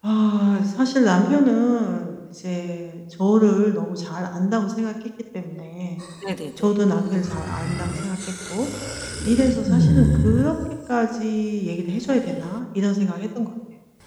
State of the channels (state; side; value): identical; both; correlation 1.00